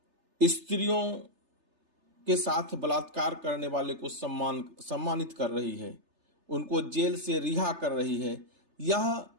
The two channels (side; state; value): left; late; 3.3 ms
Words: स्त्रियों के साथ बलात्कार करने वाले को सम्मानित कर रही है, उनको जेल से रिहा कर रही है। यह